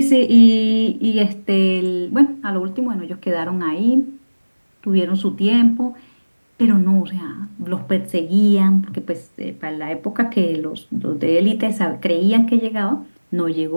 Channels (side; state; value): both; inverted; correlation -1.00